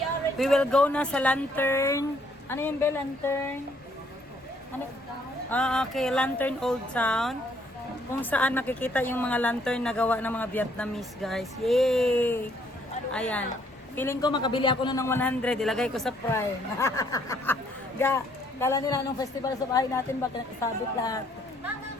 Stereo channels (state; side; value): normal; both; correlation 0.67